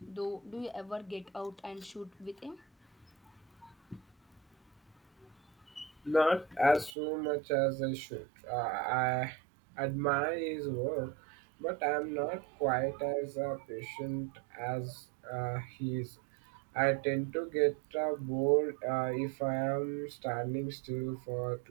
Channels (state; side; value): drops out; left; at 7.0 s